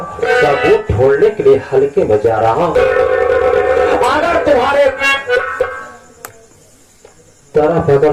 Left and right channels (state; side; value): identical; both; correlation 1.00